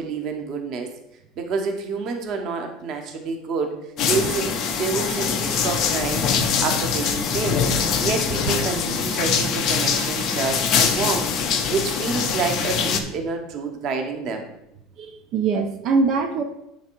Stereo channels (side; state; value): both; normal; correlation 0.39